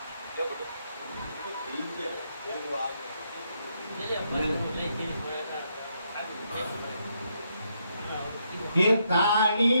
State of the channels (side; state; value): both; inverted; correlation -0.77